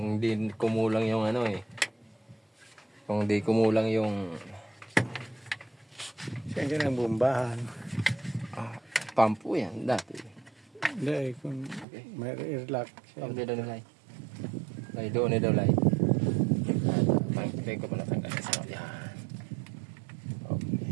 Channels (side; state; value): left; drops out; at 11.9 s